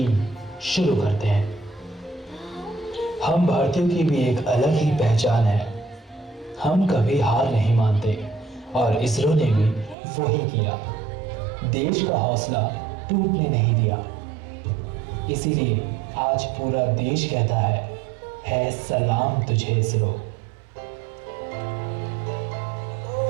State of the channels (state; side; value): drops out; left; at 10.0 s